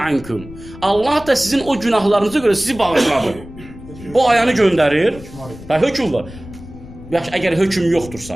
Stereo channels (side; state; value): left; noise; rumble, 16 dB below the sound